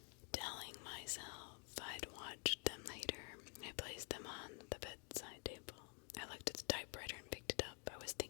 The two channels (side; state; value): right; quieter; 39.0 dB